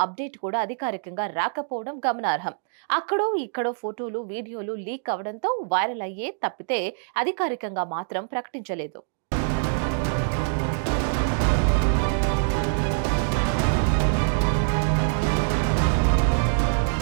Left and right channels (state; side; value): silent; left; digital silence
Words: అప్డేట్ కూడా అధికారికంగా రాకపోవడం గమనార్హం. అక్కడో ఇక్కడో ఫోటోలు వీడియోలు లీక్ అవడంతో వైరల్ అయ్యే తప్పితే అధికారికంగా మాత్రం ప్రకటించలేదు.